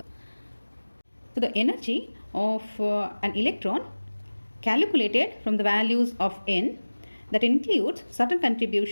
So the energy of an electron calculated from the values of n, that includes certain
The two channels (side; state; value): both; inverted; correlation -1.00